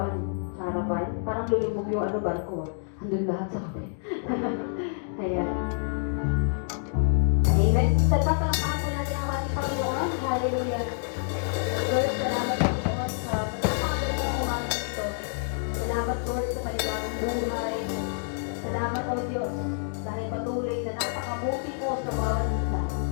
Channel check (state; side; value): silent; right; digital silence